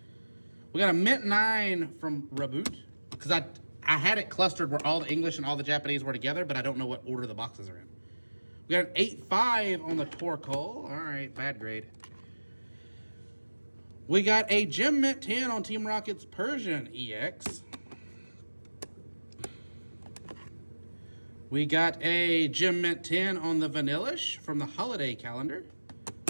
We got a Mint 9 from Reboot, because I had it clustered where all the English and all the Japanese were together, but I don't know what order the boxes are in. We We got an 8.5 on the Torkoal. All right, bad grade. We got a Gem Mint 10 on Team Rocket's Persian EX. We got a Gem Mint 10 on the Vanillish from the holiday calendar.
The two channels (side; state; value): both; inverted; correlation -1.00